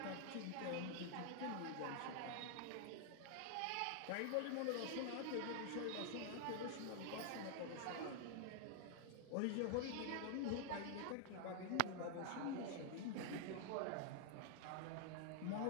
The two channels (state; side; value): different; both; correlation 0.00